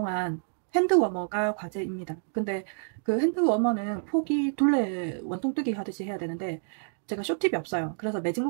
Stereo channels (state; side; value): silent; left; digital silence